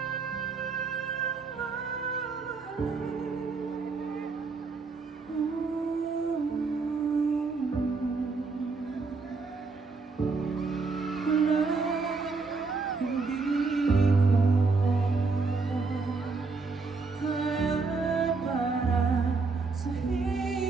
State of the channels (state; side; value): quieter; left; 4.3 dB